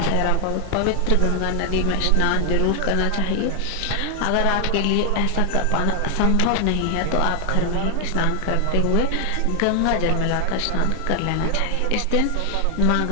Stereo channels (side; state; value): both; different; correlation 0.00